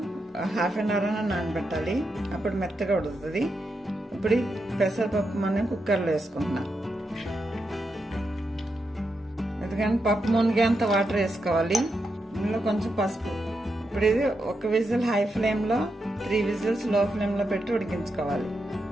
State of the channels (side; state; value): both; normal; correlation 0.85